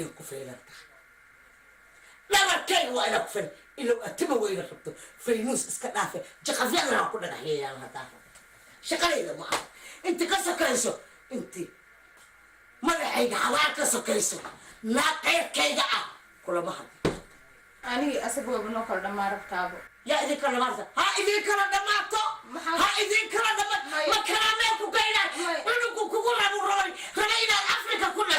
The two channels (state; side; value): identical; both; correlation 1.00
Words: كفيلة لبركي وإنا كفيلة إلا أتبع وإنا خبطو فينوس اسكتافي جقفيانا كنا نحيي يا الله شقلي إذا ما أنت كسكيسو أنت مدحيك حوالك سكيسو لا غير كيدا كل ما حد أنا أسبوع بنوكل دمار بتابو يا إذا كلا مرة ها إذا كلا دمارتو ها إذا كلا دمار ما كلامك وكينا إنه كوكولا نوراني خلينا أفريقيا